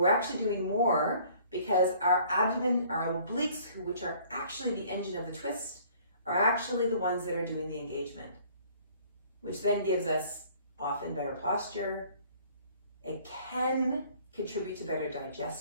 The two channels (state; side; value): inverted; both; correlation -0.55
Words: actually doing more because our abdomen, our obliques, which are actually the engine of the twist, are actually the ones that are doing the engagement, which then gives us often better posture. It can contribute to better